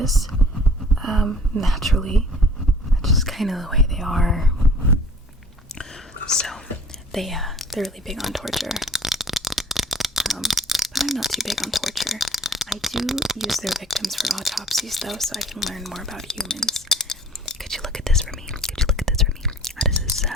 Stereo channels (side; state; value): both; normal; correlation 0.51